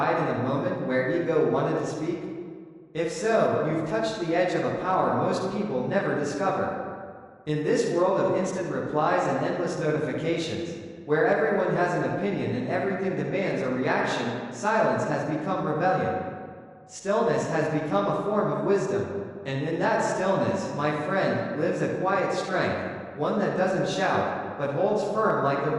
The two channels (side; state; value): both; identical; correlation 1.00